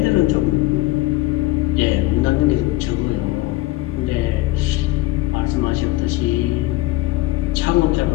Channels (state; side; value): quieter; right; 18.3 dB